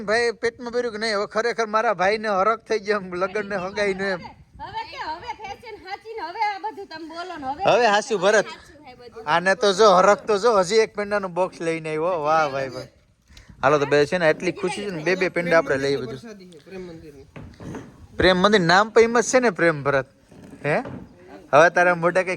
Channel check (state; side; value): identical; both; correlation 1.00